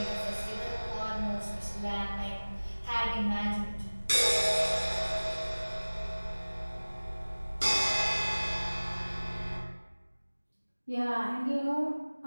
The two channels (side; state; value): both; inverted; correlation -1.00